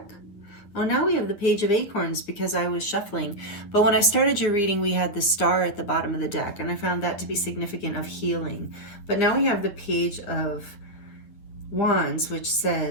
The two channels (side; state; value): right; late; 9.9 ms